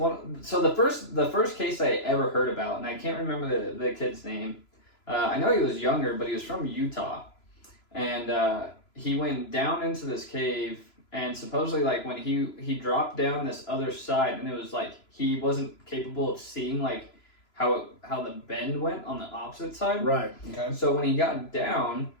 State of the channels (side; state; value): right; late; 3.0 ms